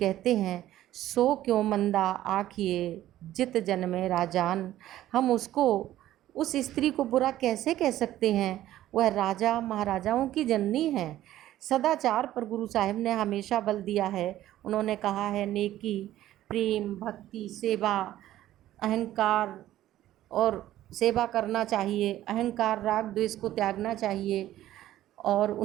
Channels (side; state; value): left; quieter; 13.7 dB